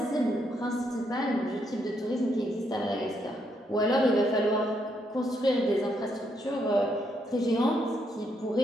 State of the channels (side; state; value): both; normal; correlation 0.76